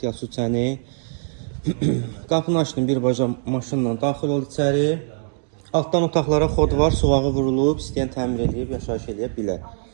su çəni. Qapını açdım, birbaşa maşınla daxil ol içəri. Altdan otaqlara xod var, suvağı vurulub, istəyən təmir edib, yaşayış edə bilər.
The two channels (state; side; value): silent; left; 63 dB below the other